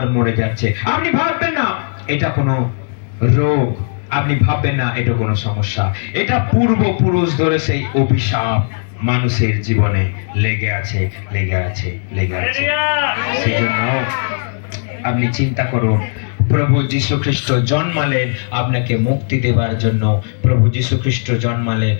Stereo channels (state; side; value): silent; right; digital silence